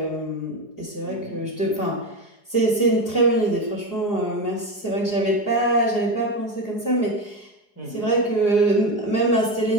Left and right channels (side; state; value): right; late; 4.8 ms